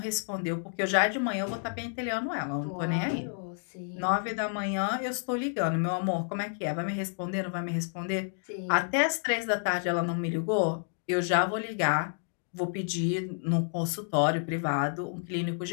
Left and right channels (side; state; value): right; silent; digital silence